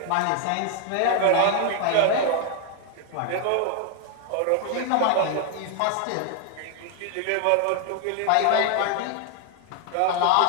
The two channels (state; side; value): different; both; correlation 0.00